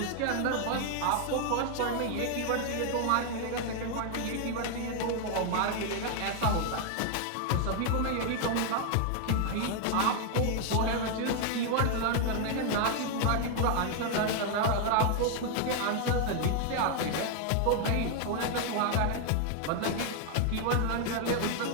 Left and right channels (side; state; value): both; different; correlation 0.00